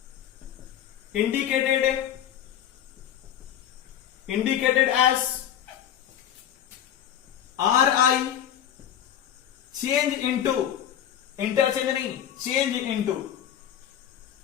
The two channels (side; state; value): right; quieter; 10.2 dB